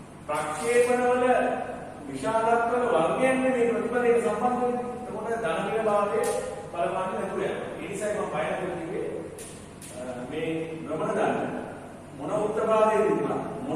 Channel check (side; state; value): both; identical; correlation 1.00